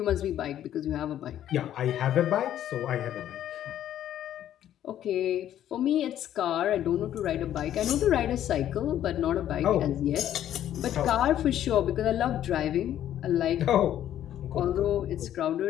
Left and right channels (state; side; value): quieter; right; 11.4 dB